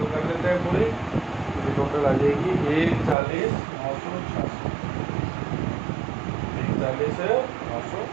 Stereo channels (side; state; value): left; drops out; at 3.2 s